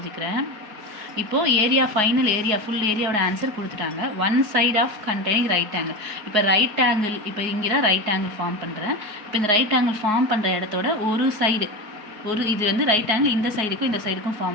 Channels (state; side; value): late; left; 4.7 ms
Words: இப்போது ஏரியா ஃபைனல் ஏரியா ஃபுல் ஏரியாவோட ஆன்சர் கொடுத்துட்டாங்க. One side of containing right angle. இப்போ ரைட் ஆங்கிள் இப்போ இங்கே தான் ரைட் ஆங்கிள் ஃபார்ம் பண்ணுறேன். இப்போ இந்த ரைட் ஆங்கிள் ஃபார்ம் பண்ணுற இடத்தோட ஒரு சைடு இது வந்து ரைட் ஆங்கிள் இந்த சைடுக்கும் இந்த சைடுக்கும்